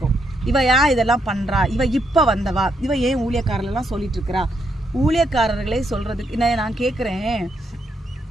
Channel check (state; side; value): normal; both; correlation 0.78